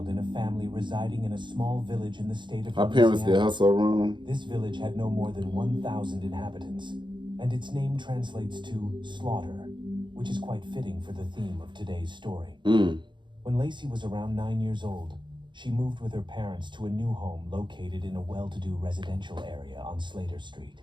in a family residing in a small village in the state of Her parents did her so wrong. This village had no more than 1,000 inhabitants, and its name translates to slaughter, which is quite fitting for the theme of today's story. When Lacey was around 9 years old, she moved with her parents to a new home located in a well-to-do residential area on Slater Street.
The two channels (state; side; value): late; left; 0.23 ms